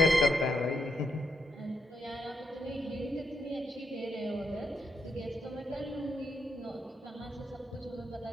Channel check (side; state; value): both; normal; correlation 0.81